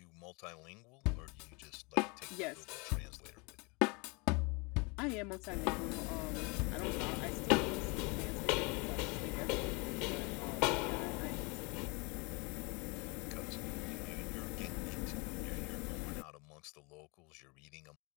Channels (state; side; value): quieter; right; 29.3 dB